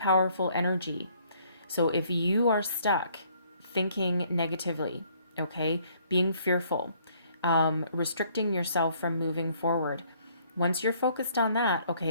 energy. So if you are stuck thinking negatively, okay, being fearful, restricting yourself from moving forward, once you're focused on that,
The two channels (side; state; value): both; inverted; correlation -0.63